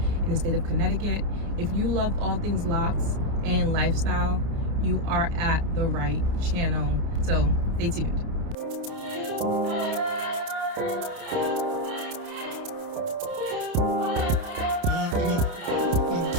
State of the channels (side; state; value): left; late; 29 ms